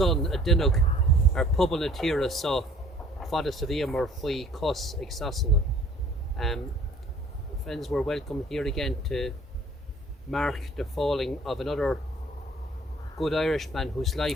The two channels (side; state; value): both; normal; correlation 0.54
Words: a duineog ar pobal na tíre so fada sa bhí mar faoi cos ag sasanna. Friends, we're welcome here again to mark the falling of another good Irishman whose